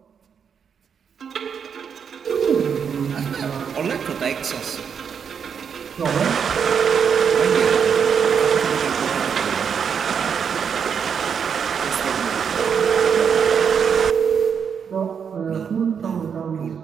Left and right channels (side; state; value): left; quieter; 7.0 dB